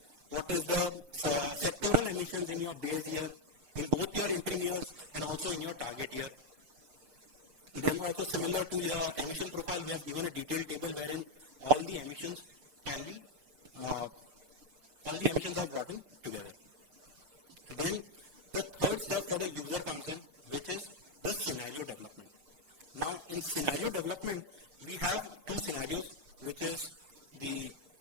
What is the sectoral emissions in your base year, in both your interim years and also in your target year. Then also similar to your emission profile, we have given a detailed table wherein all the emissions are brought in together. Then the third step for the user comes in, which is the scenario development. Now in scenario development, we have two scenarios, which is the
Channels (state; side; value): late; left; 6.6 ms